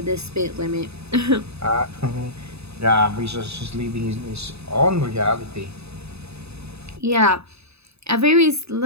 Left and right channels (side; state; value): left; late; 0.79 ms